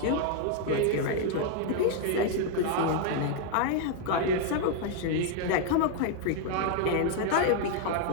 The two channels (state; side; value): different; both; correlation 0.00